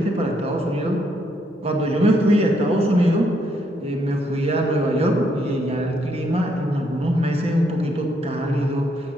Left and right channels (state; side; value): normal; both; correlation 0.74